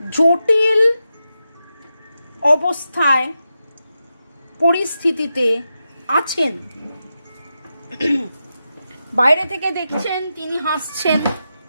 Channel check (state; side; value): inverted; both; correlation -0.89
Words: জটিল অবস্থায় পরিস্থিতিতে আছেন, বাইরে থেকে দেখছেন তিনি হাসছেন,